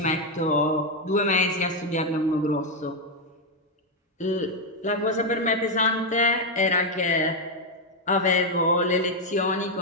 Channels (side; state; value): both; normal; correlation 0.03